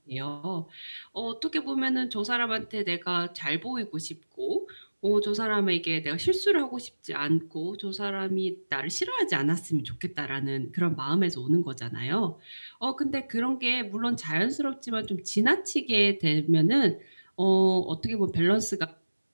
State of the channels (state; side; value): inverted; both; correlation -1.00